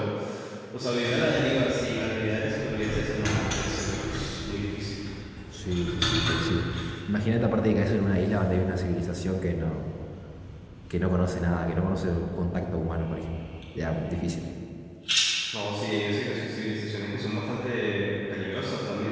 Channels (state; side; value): identical; both; correlation 1.00